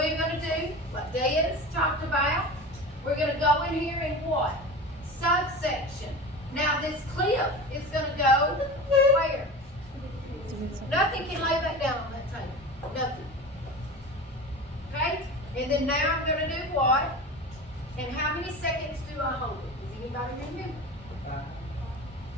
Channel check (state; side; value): normal; both; correlation 0.32